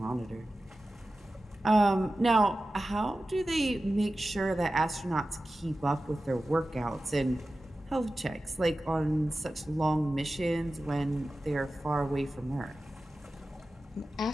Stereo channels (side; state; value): both; normal; correlation 0.94